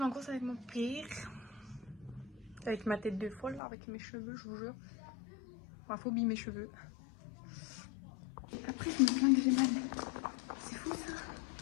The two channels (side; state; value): right; drops out; at 3.6 s